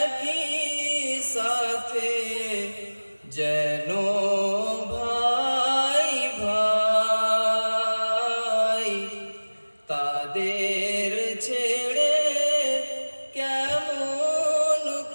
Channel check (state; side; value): inverted; both; correlation -1.00